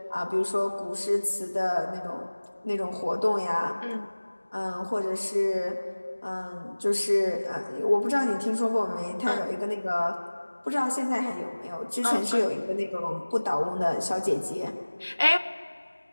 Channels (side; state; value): both; inverted; correlation -1.00